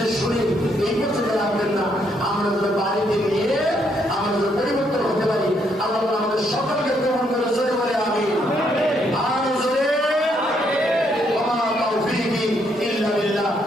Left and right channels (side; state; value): both; normal; correlation 0.73